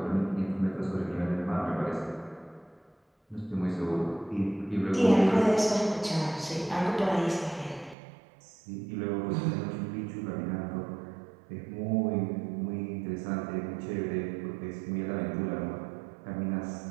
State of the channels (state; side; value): drops out; left; at 8.0 s